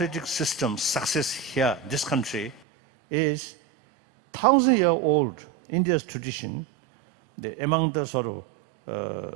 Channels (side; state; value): left; drops out; at 2.6 s